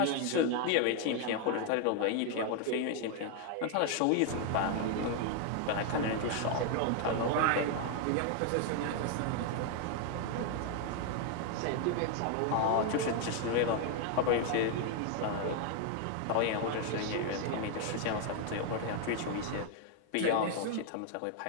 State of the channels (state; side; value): different; both; correlation 0.00